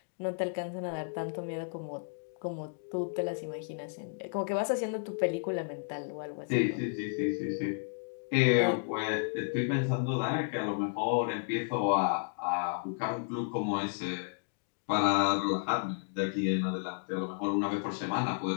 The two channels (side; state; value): right; silent; digital silence